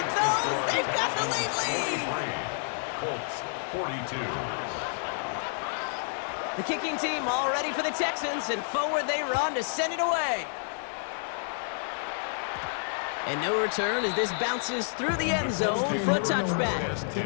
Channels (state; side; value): silent; right; 58 dB below the other